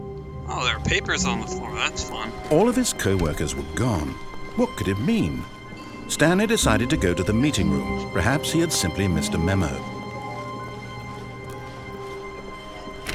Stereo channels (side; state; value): both; identical; correlation 1.00